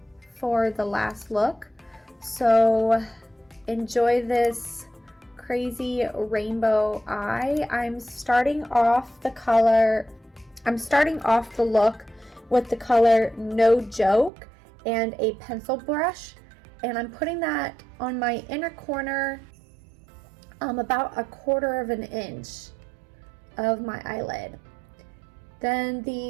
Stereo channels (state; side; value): drops out; left; at 14.3 s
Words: for the last look. So enjoy this crazy rainbow eye. I'm starting off the look with the color No Joke and a pencil brush, and I'm putting that on my inner corner, about 1/4 of an inch of my eyelid. Then